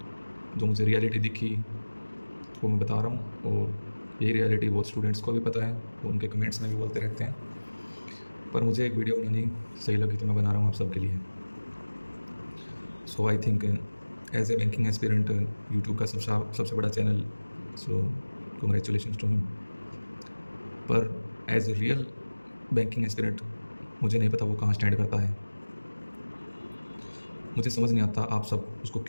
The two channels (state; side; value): inverted; both; correlation -1.00